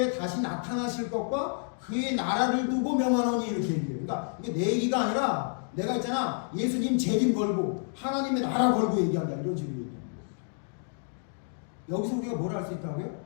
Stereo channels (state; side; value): silent; right; 55 dB below the other